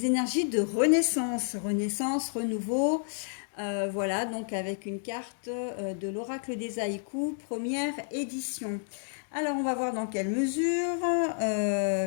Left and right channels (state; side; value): silent; right; digital silence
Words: énergies de renaissance, renouveau. Voilà, donc avec une carte de l'oracle des haïkus, première édition. Alors, on va voir dans quelle mesure.